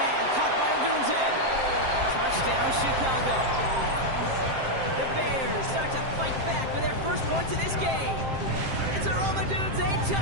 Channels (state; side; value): late; left; 7.6 ms